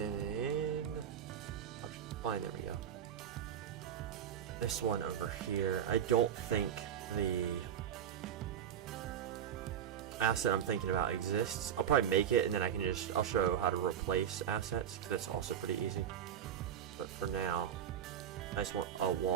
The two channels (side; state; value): left; quieter; 9.1 dB